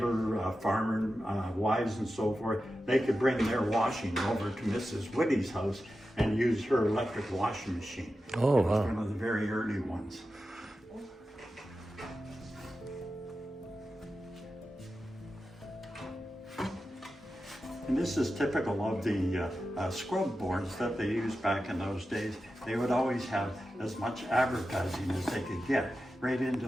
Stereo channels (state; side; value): normal; both; correlation 0.92